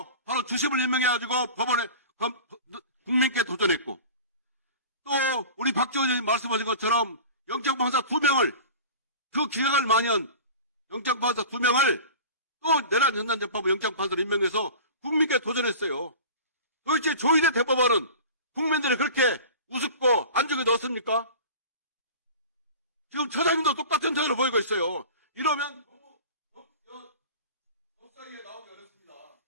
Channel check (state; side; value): inverted; both; correlation -0.38